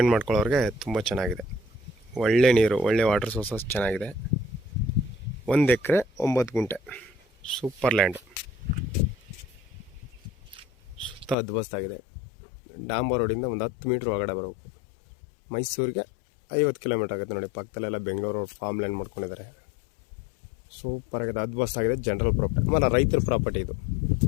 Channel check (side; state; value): right; drops out; at 11.4 s